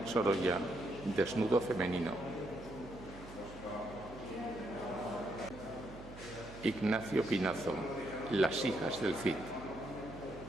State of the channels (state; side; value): noise; right; hum, 15 dB below the sound